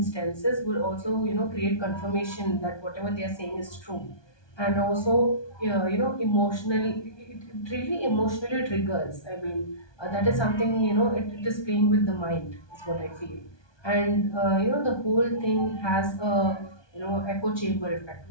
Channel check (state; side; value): late; right; 1.2 ms